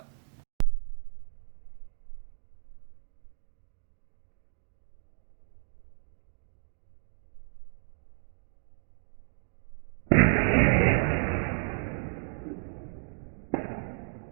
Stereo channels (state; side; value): silent; left; 56 dB below the other